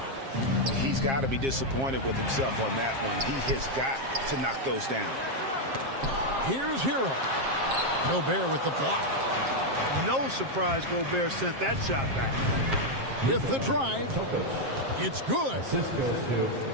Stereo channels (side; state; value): left; late; 7.5 ms